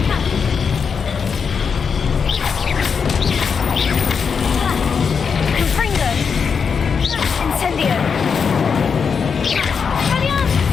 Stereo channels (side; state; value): right; quieter; 6.1 dB